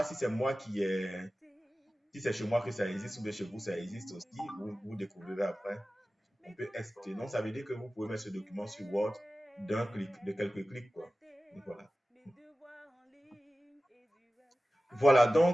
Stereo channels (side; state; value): both; normal; correlation 0.96